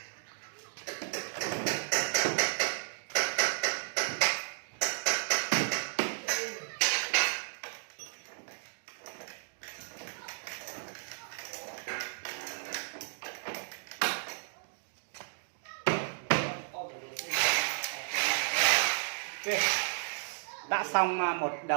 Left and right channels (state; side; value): silent; left; digital silence